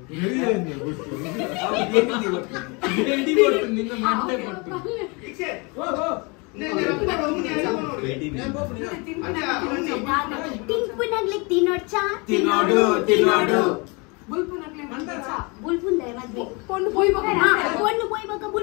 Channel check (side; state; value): right; quieter; 29.7 dB